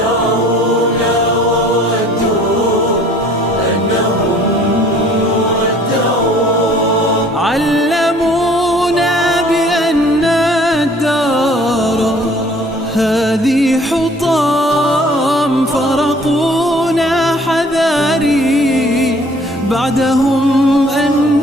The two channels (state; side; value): normal; both; correlation 0.54